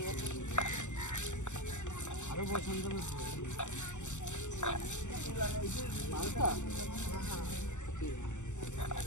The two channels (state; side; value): late; right; 0.84 ms